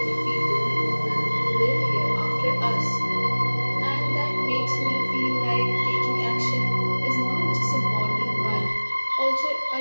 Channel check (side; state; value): both; inverted; correlation -1.00